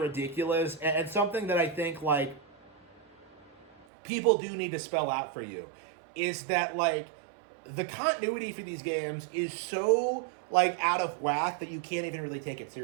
and something that I think like people do need to spell out for you is that like the continuity for these games is so like out of whack that you can't even really take it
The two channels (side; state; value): left; drops out; at 3.9 s